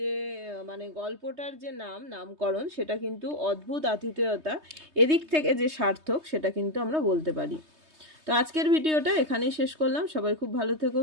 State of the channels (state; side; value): late; left; 3.2 ms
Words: গল্পটার যে নামকরণ সেটা কিন্তু অদ্ভুত আতিথেয়তা, এদিক থেকে যে সার্থক সেটা কিন্তু আমরা বলতে পারি। তো আজকের ভিডিওটা এখানেই শেষ করলাম। সবাই খুব ভালো থেকো,